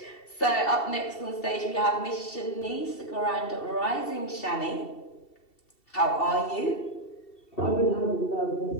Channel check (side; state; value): right; late; 2.7 ms